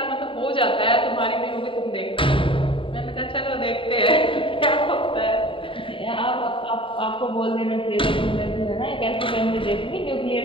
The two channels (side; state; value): right; late; 0.25 ms